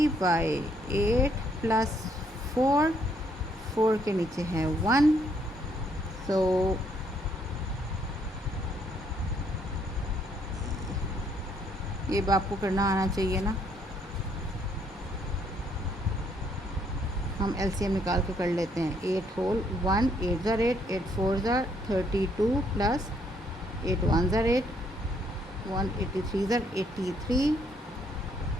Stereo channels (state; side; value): normal; both; correlation 0.70